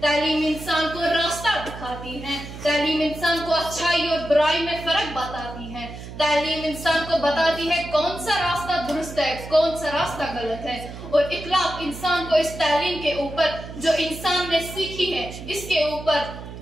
तालीम इंसान को रास्ता दिखाती है, तालीम इंसान को अच्छाई और बुराई में फर्क बताती है, तालीम इंसान को बताती है कौन सा रास्ता दुरुस्त है, कौन सा रास्ता गलत है। और इखलाक इंसान को इस तालीम के ऊपर जो इंसान ने सीखी है इसके ऊपर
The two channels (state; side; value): noise; right; hum, 12 dB below the sound